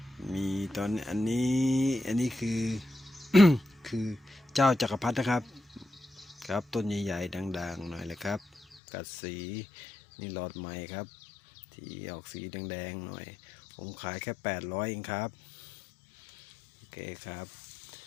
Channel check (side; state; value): right; drops out; at 8.8 s